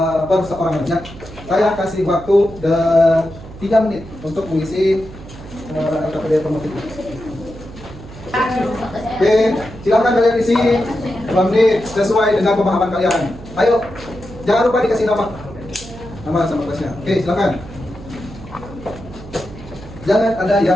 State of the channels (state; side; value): noise; right; hum, 16 dB below the sound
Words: per seorang aja. Saya kasih waktu 3 menit untuk mengisi KPD formatif ini. Oke, silakan kalian isi 2 menit sesuai dengan pemahaman kalian. Ayo, jangan lupa dikasih nama sama kelasnya. Oke, silakan. Jangan ada